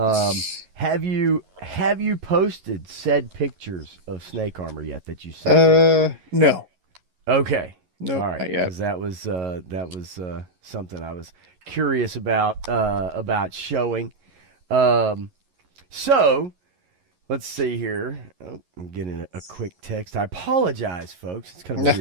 you posted said pictures of snake armor yet that you sent me? No, Okay, all nope, right, not yet. because that was something I was curious about showing. Um, so. Let's see here. Oh, I'm getting a quick text. I apologize, folks. It's kind of a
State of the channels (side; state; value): left; late; 11 ms